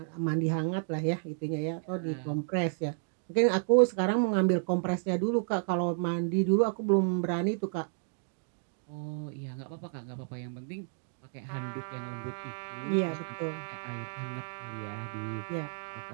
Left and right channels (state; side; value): silent; left; digital silence